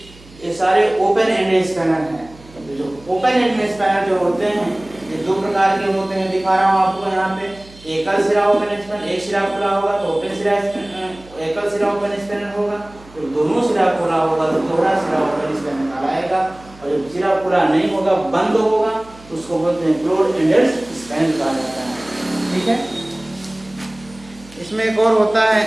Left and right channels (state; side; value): noise; right; hum, 23 dB below the sound